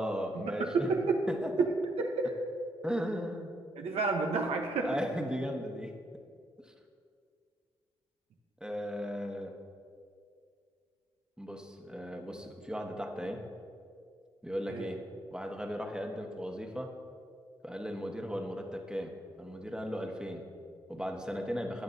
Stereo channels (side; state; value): both; normal; correlation 0.75